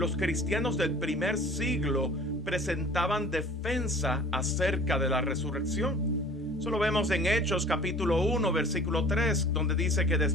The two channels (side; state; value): both; normal; correlation 0.46